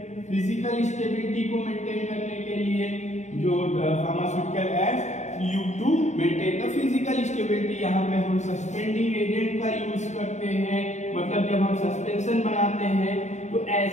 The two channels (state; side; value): late; right; 0.34 ms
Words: फिजिकल स्टेबिलिटी को मेंटेन करने के लिए जो pharmaceutical aids you to maintain the physical stability, यहाँ पे हम सस्पेंडिंग एजेंट का यूज करते हैं। मतलब जब हम सस्पेंशन बनाते हैं तो